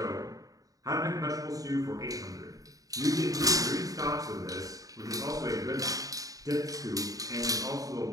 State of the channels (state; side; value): late; left; 0.17 ms